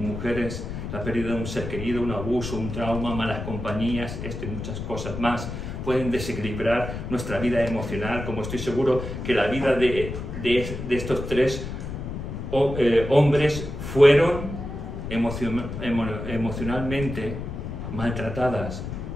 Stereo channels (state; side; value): noise; left; rumble, 7 dB below the sound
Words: la pérdida de un ser querido, un abuso, un trauma, malas compañías, esto y muchas cosas más pueden desequilibrar nuestra vida emocional, como estoy seguro que la vida de estos tres hombres fueron emocionalmente maltratadas.